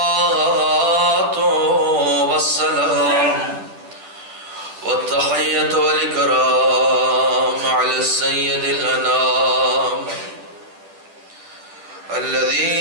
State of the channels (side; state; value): left; late; 10 ms